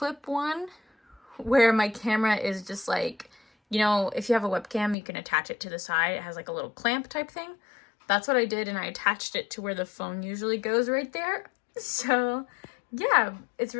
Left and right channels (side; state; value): right; drops out; at 5.0 s